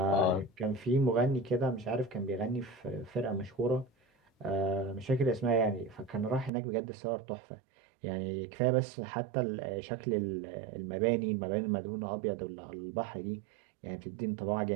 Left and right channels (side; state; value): left; drops out; at 6.5 s